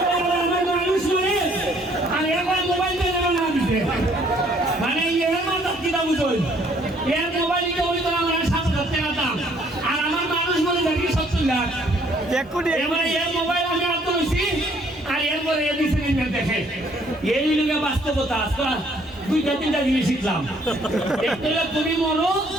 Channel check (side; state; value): both; normal; correlation 0.63